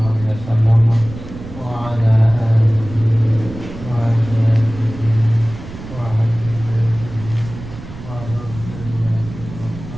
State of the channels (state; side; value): noise; right; rumble, 13 dB below the sound